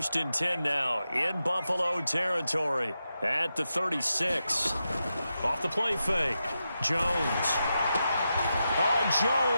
and 10 now in Buffalo territory at the 36. Off the play fake. Jones. Oh,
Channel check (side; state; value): both; inverted; correlation -0.88